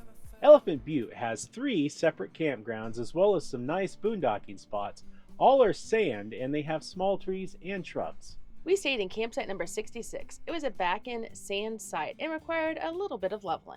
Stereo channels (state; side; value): identical; both; correlation 1.00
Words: Elephant Butte has 3 separate campgrounds as well as some nice boondocking spots. All are sand and they have small trees and shrubs. We stayed in campsite number 66. It was a back-end sand site and required a little bit of